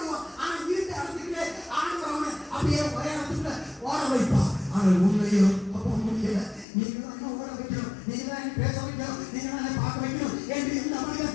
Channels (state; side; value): drops out; right; at 6.7 s